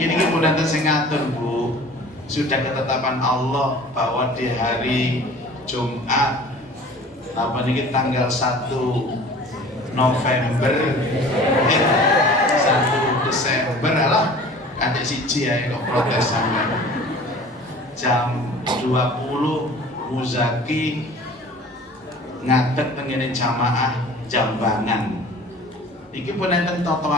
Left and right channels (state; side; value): normal; both; correlation 0.45